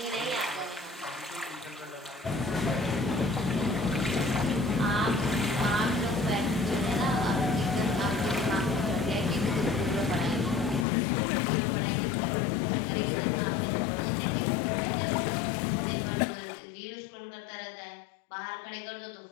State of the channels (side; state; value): right; drops out; at 10.9 s